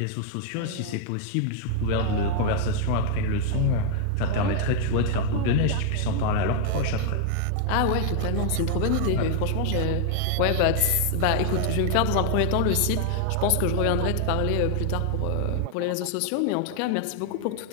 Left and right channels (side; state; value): both; different; correlation 0.00